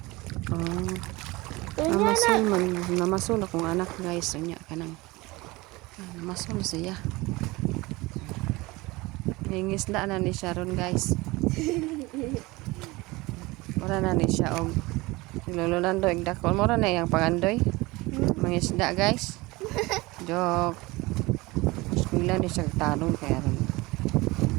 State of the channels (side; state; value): left; quieter; 22.1 dB